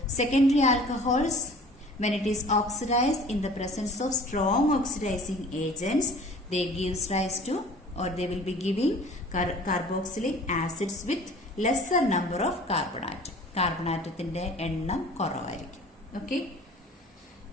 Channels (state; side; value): normal; both; correlation 0.47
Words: secondary alcohols when it is oxidized in the presence of strong oxidizing agents, they gives rise to, or they will be giving carboxylic acids with lesser number of carbon atom. Carbon ആറ്റത്തിന്റെ എണ്ണം കുറവായിരിക്കും. Okay,